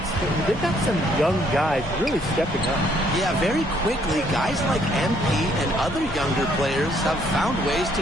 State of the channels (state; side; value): normal; both; correlation 0.67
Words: but they've got some young guys really stepping up. Yeah, very quickly, guys like MP and other younger players have found ways